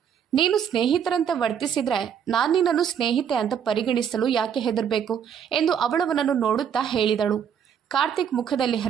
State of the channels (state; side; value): quieter; left; 8.1 dB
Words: ನೀನು ಸ್ನೇಹಿತರಂತೆ ವರ್ತಿಸಿದ್ರೆ ನಾನು ನಿನ್ನನ್ನು ಸ್ನೇಹಿತೆ ಅಂತ ಪರಿಗಣಿಸಲು ಯಾಕೆ ಹೆದರಬೇಕು ಎಂದು ಅವಳವನನ್ನು ನೋಡುತ್ತಾ ಹೇಳಿದಳು. ಕಾರ್ತಿಕ್ ಮುಖದಲ್ಲಿ